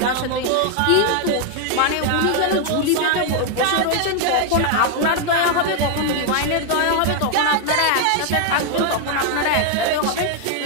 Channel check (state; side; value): different; both; correlation 0.00